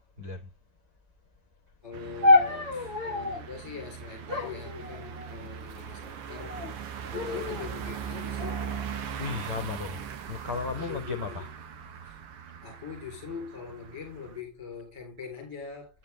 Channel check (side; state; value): left; late; 8.6 ms